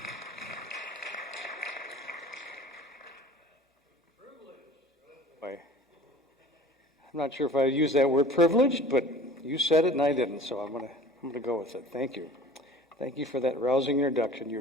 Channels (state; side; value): normal; both; correlation 0.44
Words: I'm not sure if I use that word privileged, but you said it and I didn't, so I'm gonna go with it. Thank you. Thank you for that rousing introduction.